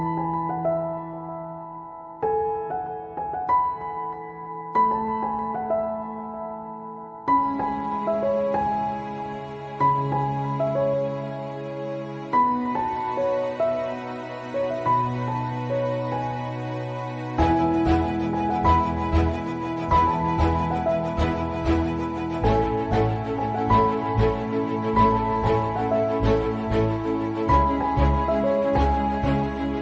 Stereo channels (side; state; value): both; identical; correlation 1.00